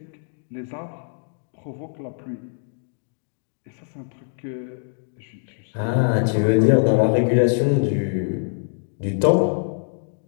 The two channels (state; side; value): silent; right; digital silence